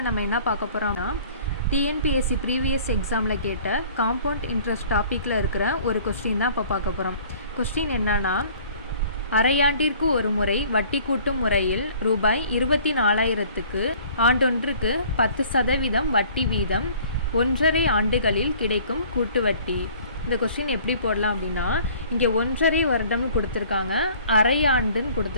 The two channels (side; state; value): both; inverted; correlation -0.52